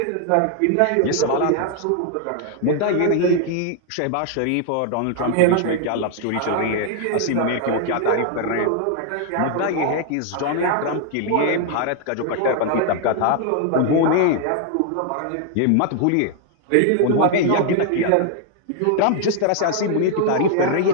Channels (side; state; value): both; different; correlation 0.00